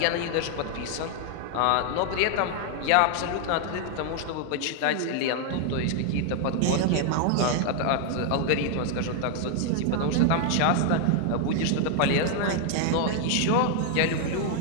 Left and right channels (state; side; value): different; both; correlation 0.00